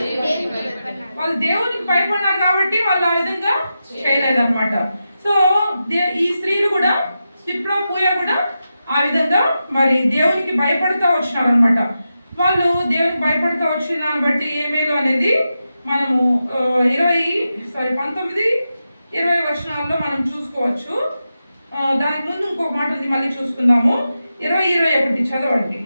వాళ్ళు దేవునికి భయపడినారు కాబట్టి వాళ్ళు ఆ విధంగా చేయలేదన్నమాట. సో ఈ స్త్రీలు కూడా, సిప్రా, పూయ కూడా ఆ విధంగా మరి దేవునికి భయపడుతూ వచ్చినారు అనమాట. వాళ్ళు దేవునికి భయపడుతూ వచ్చిన దాన్ని బట్టి ఏ మేలు అనేది మనము 19-20 వచనాల్లో మనం చూసుకోవచ్చు. దానికి ముందు ఇంకొక మాట ఉంది, మళ్ళీ చూసుకుందాము. 20-21 చదవండి.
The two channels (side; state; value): both; inverted; correlation -0.90